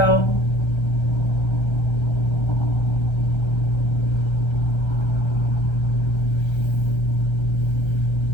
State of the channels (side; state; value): right; late; 1.3 ms